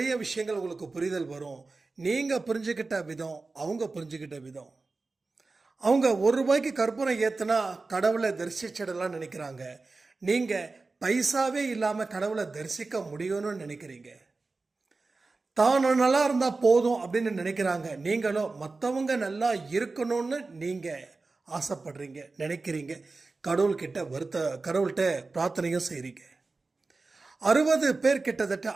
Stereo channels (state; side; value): quieter; left; 3.7 dB